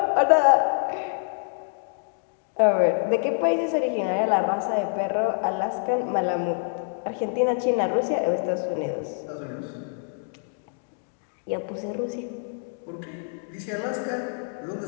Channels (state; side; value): silent; right; digital silence